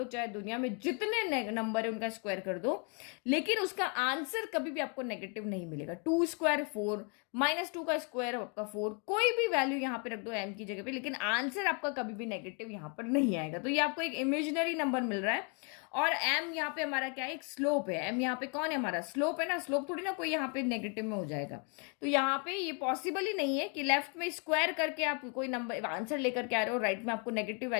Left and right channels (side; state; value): right; quieter; 36.7 dB